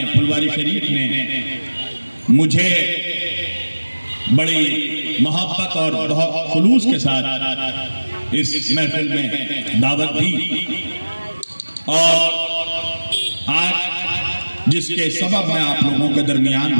फुलवारी शरीफ ने मुझे बड़ी मोहब्बत और बहुत खुलूस के साथ इस महफिल में दावत दी और आज जिसके सबब मैं आप लोगों के दरमियान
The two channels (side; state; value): both; inverted; correlation -1.00